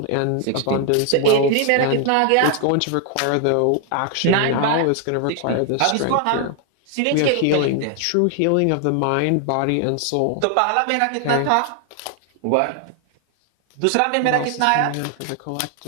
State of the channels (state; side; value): different; both; correlation 0.00